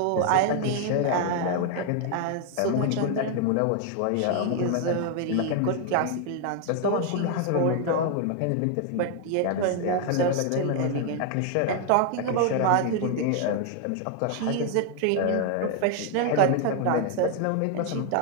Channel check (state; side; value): different; both; correlation 0.00